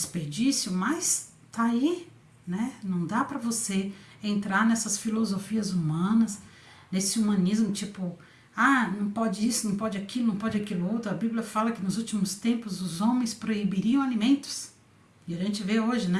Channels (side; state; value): both; identical; correlation 1.00